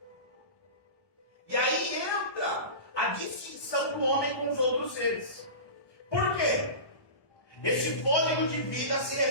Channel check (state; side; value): late; right; 1.2 ms